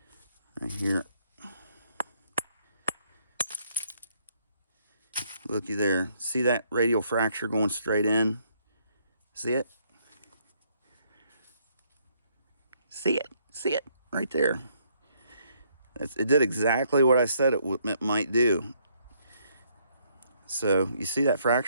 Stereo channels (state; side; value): inverted; both; correlation -0.70